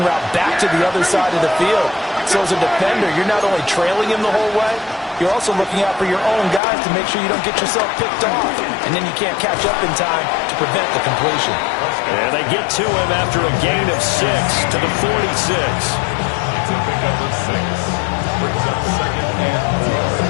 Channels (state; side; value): drops out; right; at 6.6 s